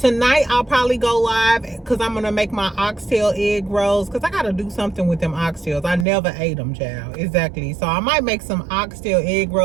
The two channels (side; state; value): left; drops out; at 6.1 s